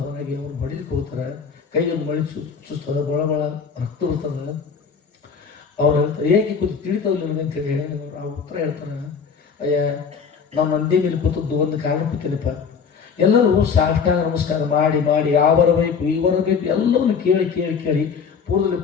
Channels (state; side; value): quieter; right; 6.1 dB